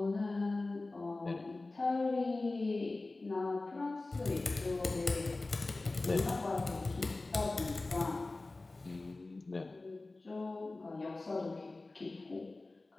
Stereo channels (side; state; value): right; quieter; 3.2 dB